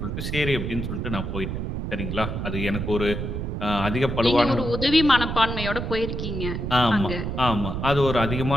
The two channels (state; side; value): noise; right; rumble, 4 dB below the sound